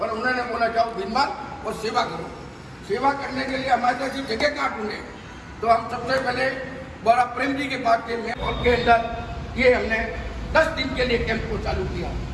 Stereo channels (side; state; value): both; identical; correlation 1.00